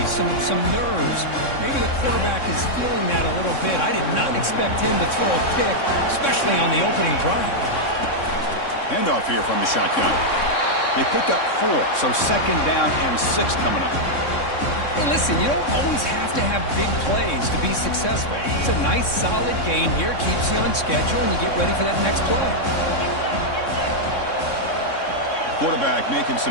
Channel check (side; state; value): right; late; 3.6 ms